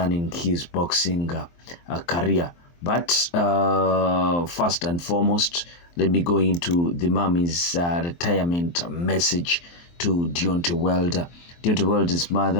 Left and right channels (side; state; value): right; late; 23 ms